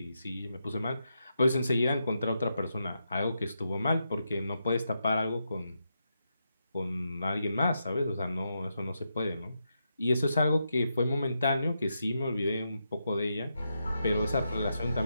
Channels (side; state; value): both; inverted; correlation -0.84